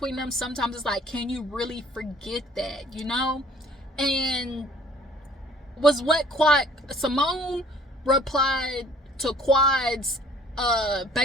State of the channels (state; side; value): normal; both; correlation 0.55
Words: them. Sometimes it's like, can you really forget that, you know? And was what Simone replied to Quad's